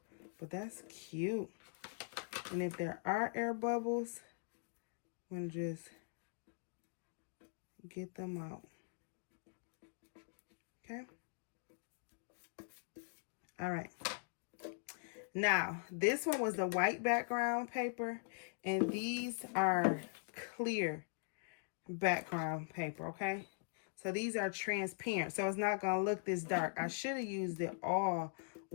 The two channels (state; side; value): silent; right; digital silence